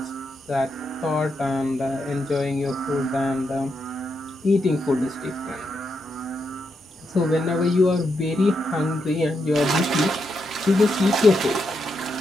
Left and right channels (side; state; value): both; normal; correlation 0.83